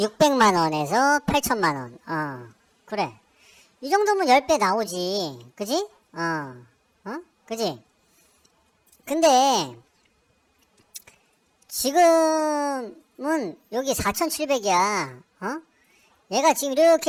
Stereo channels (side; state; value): both; identical; correlation 1.00